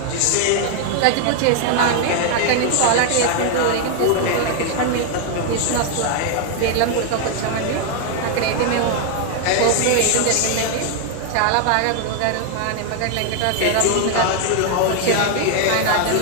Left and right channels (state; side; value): different; both; correlation 0.00